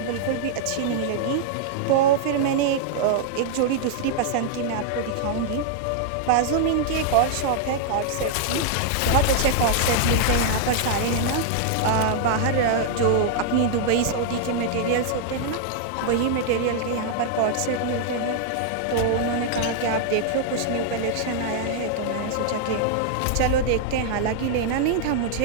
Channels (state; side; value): different; both; correlation -0.01